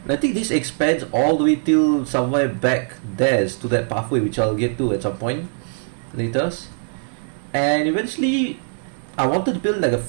And I think this expands all the way till somewhere back there to that pathway, which I'll get to at some point later. And eventually I wanted to build like a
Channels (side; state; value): left; silent; digital silence